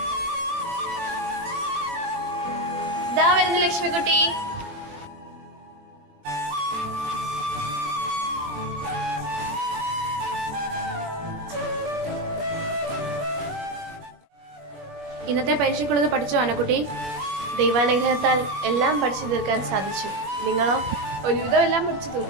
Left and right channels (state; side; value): late; left; 20 ms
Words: ദാ വരുന്നു ലക്ഷ്മിക്കുട്ടി. ഇന്നത്തെ പരീക്ഷയ്ക്കുള്ളത് പഠിച്ചോ അന്നക്കുട്ടി? ദൈവാനുഗ്രഹത്താൽ എല്ലാം പഠിച്ചു തീർക്കാൻ സാധിച്ചു. നിങ്ങളോ? ഒരുവിധം എല്ലാം പഠിച്ചു